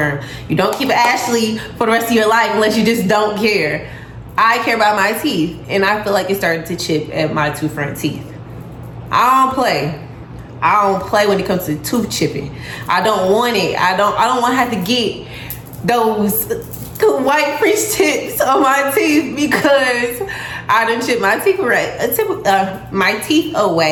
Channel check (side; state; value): both; identical; correlation 1.00